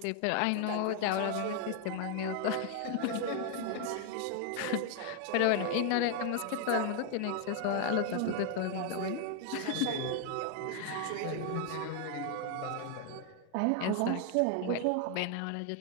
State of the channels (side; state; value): both; different; correlation 0.00